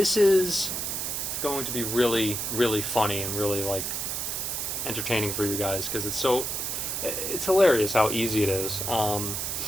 is going to be really, really funny and really, entertaining for you guys because it's hilarious how easy it is.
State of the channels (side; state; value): right; noise; hiss, 2 dB below the sound